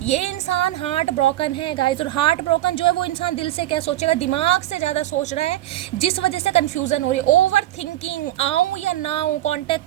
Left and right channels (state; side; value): quieter; left; 14.3 dB